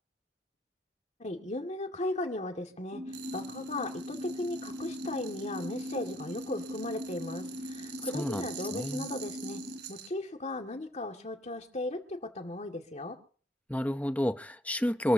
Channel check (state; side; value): normal; both; correlation 0.65